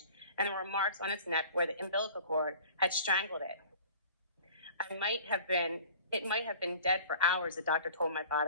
and there were marks on its neck where the umbilical cord had strangled it. It might have been dead for hours, the doctor told my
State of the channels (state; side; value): inverted; both; correlation -0.45